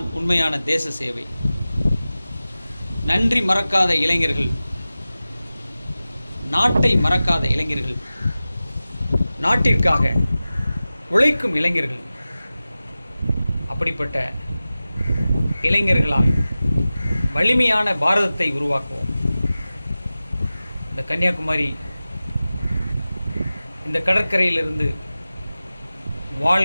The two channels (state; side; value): inverted; both; correlation -0.96